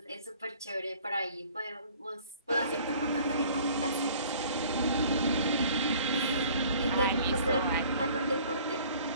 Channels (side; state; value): both; inverted; correlation -0.52